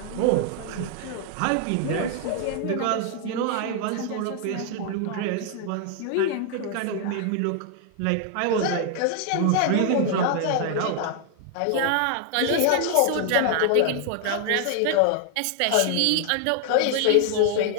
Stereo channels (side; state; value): both; different; correlation 0.00